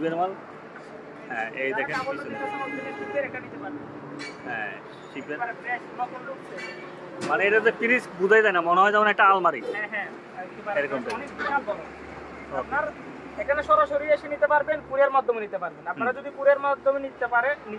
মাল। হ্যাঁ, এই দেখেন পিছনে। হ্যাঁ, শিবের মানে এটা যে ফ্রিজ বুঝাই যায় না, মনে হয় যেমন একটা আলমারি। হ্যাঁ হ্যাঁ, এরকম অনেক বিশাল বড়। আপনার এখানে সরাসরি এসে নিতে পারবেন, কুরিয়ার মাধ্যমে নিতে পারবেন। আপনারা যদি কুরিয়ার মাধ্যমে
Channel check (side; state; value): both; identical; correlation 1.00